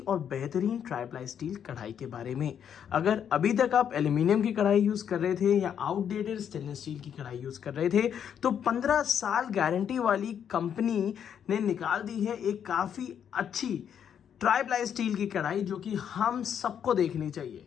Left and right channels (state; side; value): quieter; right; 8.6 dB